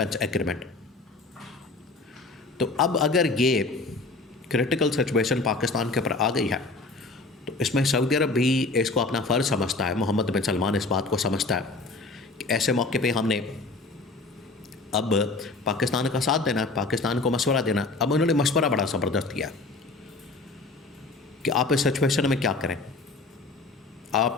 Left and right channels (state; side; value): quieter; right; 3.5 dB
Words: एग्रीमेंट। तो अब अगर ये क्रिटिकल सिचुएशन पाकिस्तान के ऊपर आ गई है तो इसमें सऊदी अरब भी इसको अपना फ़र्ज़ समझता है, मोहम्मद बिन सलमान इस बात को समझता है कि ऐसे मौके पे हमने अब पाकिस्तान का साथ देना, पाकिस्तान को मशवरा देना। अब उन्होंने मशवरा बड़ा ज़बरदस्त किया कि आप इस सिचुएशन में क्या करें। आप